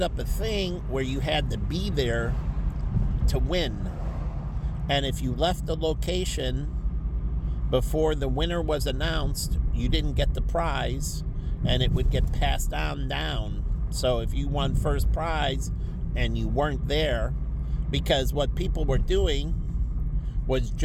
up a thing where you had to be there to win. And if you left the location before the winner was announced, you didn't get the prize, and it would get passed on down. So if you won first prize and you weren't there, because what people were doing was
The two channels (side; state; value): both; identical; correlation 1.00